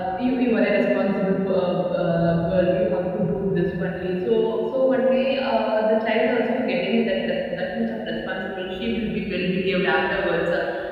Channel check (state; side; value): identical; both; correlation 1.00